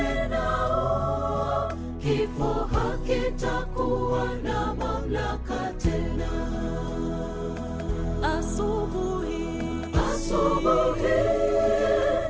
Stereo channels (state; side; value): identical; both; correlation 1.00